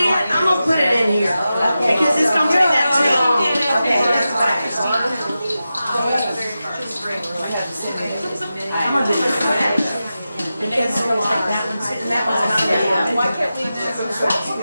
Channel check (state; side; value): inverted; both; correlation -0.92